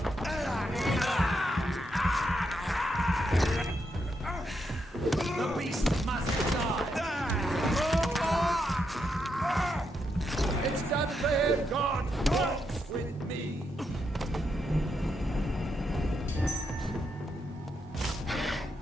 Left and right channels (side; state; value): both; normal; correlation 0.81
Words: The beast must die! It's done for him! God walks with me!